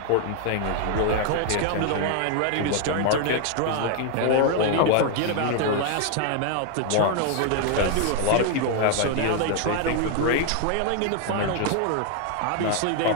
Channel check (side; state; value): both; different; correlation 0.00